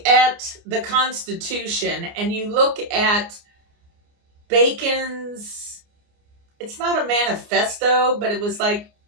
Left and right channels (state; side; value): late; left; 29 ms